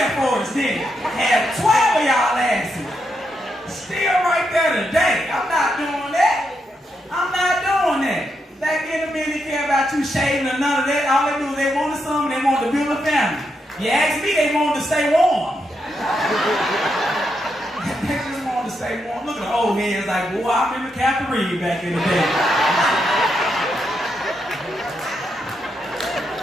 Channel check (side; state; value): both; normal; correlation 0.82